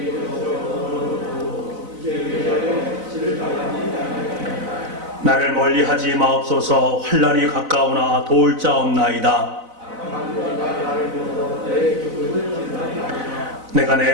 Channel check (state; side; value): late; left; 4.0 ms